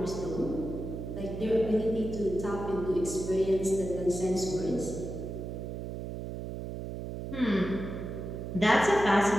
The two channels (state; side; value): noise; right; hum, 6 dB below the sound